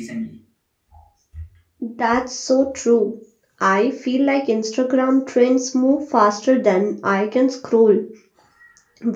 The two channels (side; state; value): both; identical; correlation 1.00